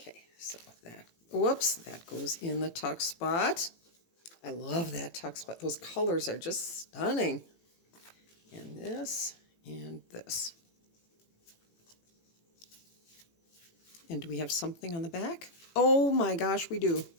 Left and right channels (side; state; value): right; late; 18 ms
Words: so that, whoops, that goes in the tuck spot. I love that tuck spot. Those colors are just stunning. And this and this. And do we have something on the back? Oh my gosh, we do.